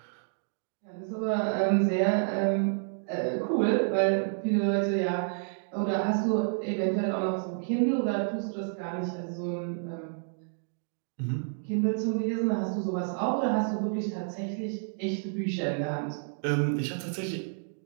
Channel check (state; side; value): silent; left; digital silence